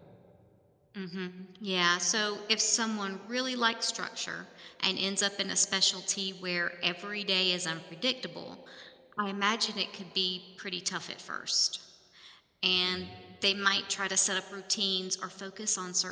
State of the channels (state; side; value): identical; both; correlation 1.00